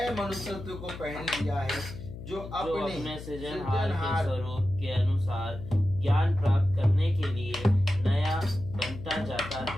मनुष्यत्व को पहन लिया है जो अपने सृजनहार के स्वरूप के अनुसार ज्ञान प्राप्त करने के लिए नया बनता जाता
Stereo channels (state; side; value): noise; left; hum, 11 dB below the sound